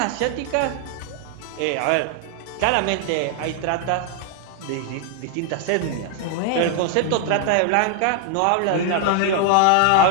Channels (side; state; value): both; different; correlation 0.00